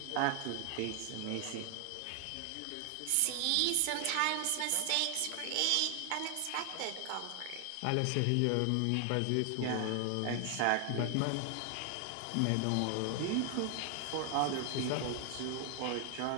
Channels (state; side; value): different; both; correlation 0.00